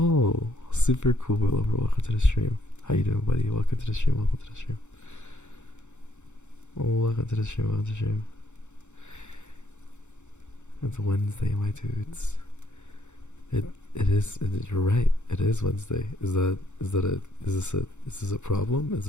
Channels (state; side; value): late; right; 0.84 ms